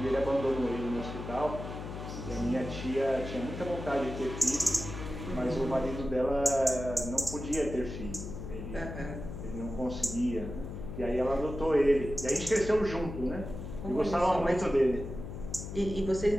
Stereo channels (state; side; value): noise; left; hum, 8 dB below the sound